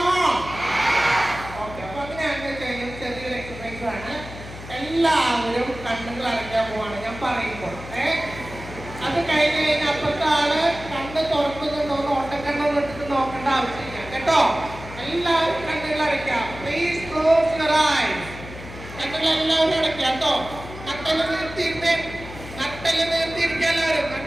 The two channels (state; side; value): noise; left; hum, 13 dB below the sound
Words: ഓക്കെ, അപ്പൊ അങ്ങനെയാണെന്ന് കഴിഞ്ഞാൽ ചെറിയൊരു എക്സസൈസ് ആണ്. എല്ലാവരും കണ്ണുകൾ അടയ്ക്കാൻ പോവാണ് ഞാൻ പറയുമ്പോൾ. അത് കഴിഞ്ഞ് കഴിഞ്ഞാൽ അപ്പുറത്തെ ആള് കണ്ണ് തുറക്കുന്നുണ്ടോന്ന് ഓട്ടക്കണ്ണൊന്നും ഇട്ടിട്ട് നോക്കേണ്ട ആവശ്യമില്ല കേട്ടോ. എല്ലാവരും കണ്ണുകൾ അടയ്ക്കാം. Please close your eyes. കണ്ണുകൾ എല്ലാവരും അടയ്ക്കാം കേട്ടോ. നട്ടല് നിർത്തിയിരുന്നേ. നട്ടല് നിർത്തിയിരിക്കുക. എല്ലാവരും